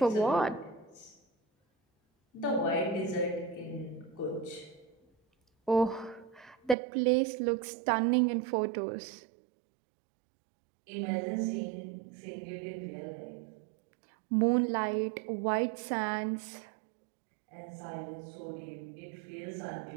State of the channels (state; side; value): drops out; left; at 6.8 s